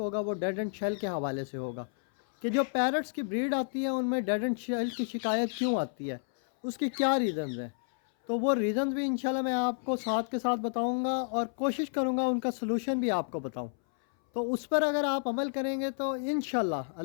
वो डेड एंड शेल के हवाले से होगा कि जो पैरट्स की ब्रीड आती है उनमें डेड एंड शेल की शिकायत क्यों आती है, उसकी क्या रीज़न्स हैं। तो वो रीज़न्स भी इंशाल्लाह मैं आपको साथ के साथ बताऊँगा और कोशिश करूँगा उनका सलूशन भी आपको बताऊँ। तो उस पर अगर आप अमल करेंगे तो इंशाल्लाह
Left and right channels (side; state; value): right; silent; 57 dB below the other